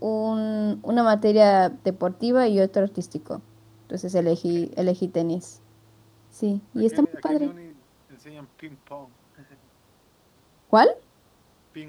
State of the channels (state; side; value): identical; both; correlation 1.00